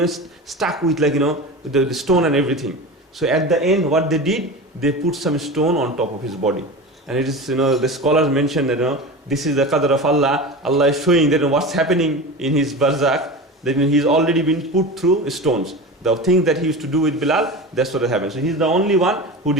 stuck with the stone and everything. So at the end, what they did, they put some stone on top of his body. And it is, the scholars mention that, this is the qadr of Allah. Allah is showing that what's happening in his barzakh, that he's already been put through stones. The things that he used to do with Bilal, that's what happened. So he's the only one who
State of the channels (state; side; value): normal; both; correlation 0.29